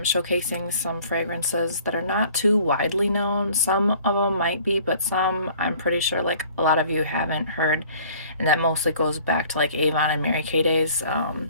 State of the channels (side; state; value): both; inverted; correlation -0.53